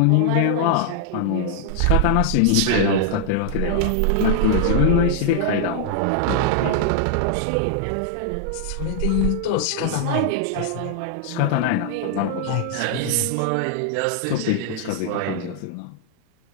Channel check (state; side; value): different; both; correlation 0.00